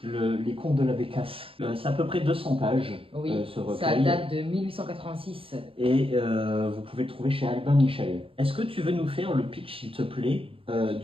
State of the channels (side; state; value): left; late; 0.27 ms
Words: Les Contes de la Bécasse. C'est à peu près 200 pages, Oui, ce ça recueil. date de 1886. Et vous pouvez le trouver chez Albin Michel. Est-ce que tu veux nous faire le pitch, s'il te plaît,